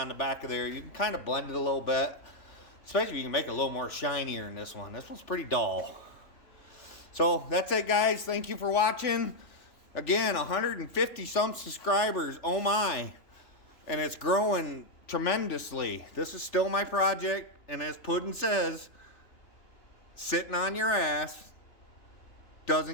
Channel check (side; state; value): right; late; 3.4 ms